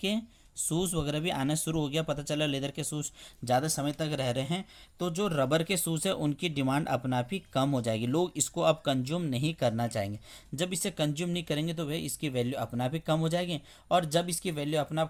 शूज़ वगैरह भी आना शुरू हो गया, पता चला लेदर के शूज़ ज़्यादा समय तक रह रहे हैं, तो जो रबर के शूज़ है उनकी डिमांड अपना आप ही कम हो जाएगी। लोग इसको अब कंज्यूम नहीं करना चाहेंगे। जब इसे कंज्यूम नहीं करेंगे तो भाई इसकी वैल्यू अपना आप ही कम हो जाएगी, और जब इसकी वैल्यू अपना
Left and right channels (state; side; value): identical; both; correlation 1.00